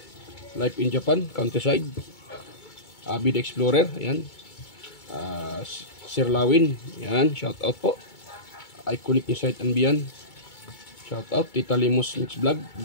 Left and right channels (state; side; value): late; right; 2.2 ms